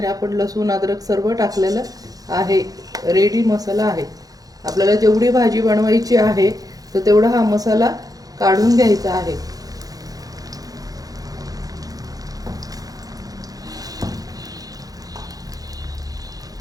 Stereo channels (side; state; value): left; late; 0.18 ms